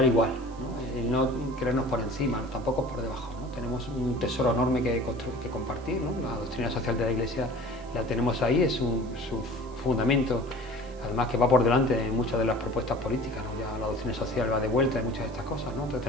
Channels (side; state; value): right; noise; hiss, 27 dB below the sound